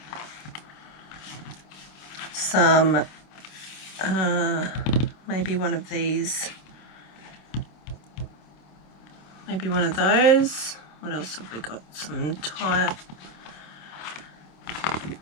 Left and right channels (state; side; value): late; right; 26 ms